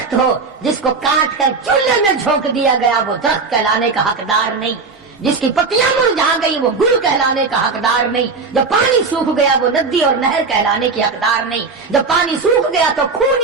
ہو، جس کو کاٹ کر چولہے میں جھونک دیا گیا وہ درخت کہلانے کا حقدار نہیں، جس کی پتیاں مرجھا گئی وہ گل کہلانے کا حقدار نہیں، جب پانی سوکھ گیا وہ ندی اور نہر کہلانے کی حقدار نہیں، جب پانی سوکھ گیا تو خون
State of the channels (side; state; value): left; quieter; 4.5 dB